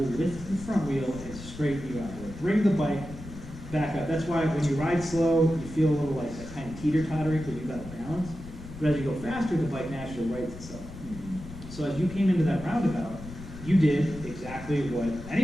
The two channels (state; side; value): noise; left; rumble, 14 dB below the sound